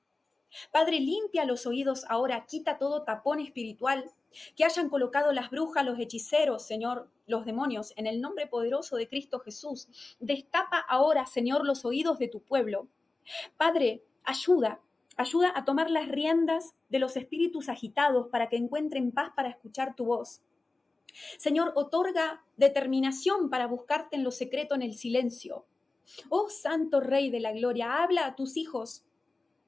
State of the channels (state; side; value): quieter; right; 3.4 dB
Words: Padre, limpia los oídos ahora, quita todo tapón espiritual que hayan colocado las brujas, los hechiceros, Señor, los demonios, en el nombre poderoso de Cristo Jesús. Destapa ahora, Señor, los oídos de tu pueblo. Padre, ayuda a tomar las riendas de los espíritus agitados para que encuentren paz para escuchar tu voz. Señor, otorga determinación para buscarte en lo secreto, en el silencio. Oh Santo Rey de la Gloria, habla a tus hijos.